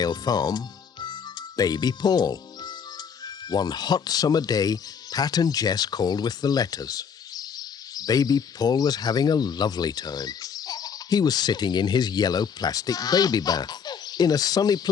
Farm, baby Paul. One hot summer day, Pat and Jess called with the letters. Baby Paul was having a lovely time. He was sitting in his yellow plastic baby bath in a sunny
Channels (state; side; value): quieter; right; 6.8 dB